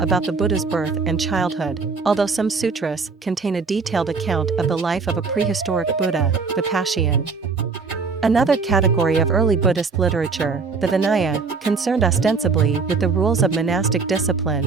the Buddha's birth and childhood, although some sutras contain a detailed account of the life of a prehistoric Buddha, Vipashian. Another category of early Buddhist literature, the Vinaya, concerned ostensibly with the rules of monastic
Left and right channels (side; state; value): left; quieter; 4.7 dB